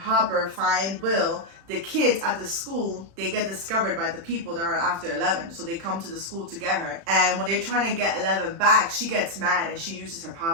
find Will, the kids at the school, they get discovered by the people that are after 11. So they come to the school to get her. And when they're trying to get 11 back, she gets mad and she uses her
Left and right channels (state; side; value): late; left; 36 ms